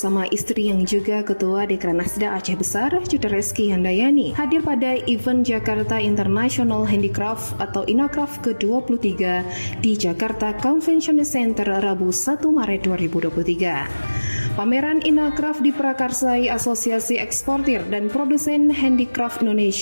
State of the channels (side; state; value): both; inverted; correlation -1.00